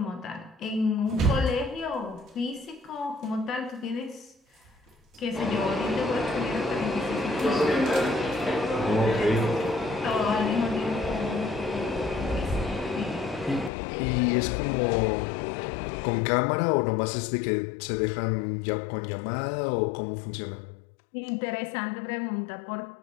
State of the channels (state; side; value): drops out; right; at 13.7 s